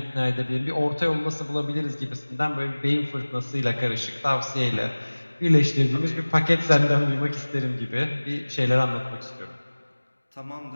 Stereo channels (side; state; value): both; inverted; correlation -1.00